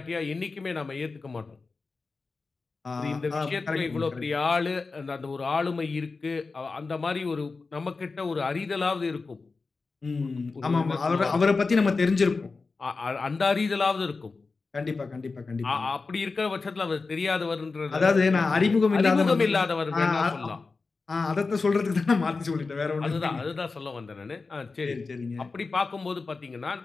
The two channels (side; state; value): right; quieter; 4.1 dB